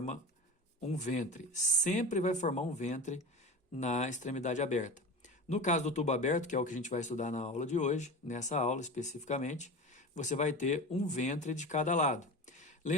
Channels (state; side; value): normal; both; correlation 0.30